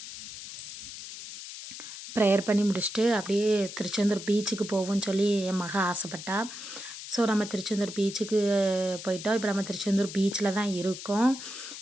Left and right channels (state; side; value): noise; left; hiss, 11 dB below the sound